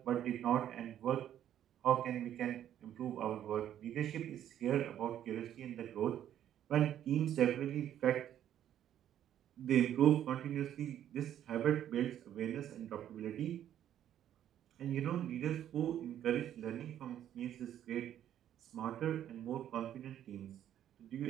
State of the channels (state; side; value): quieter; left; 10.9 dB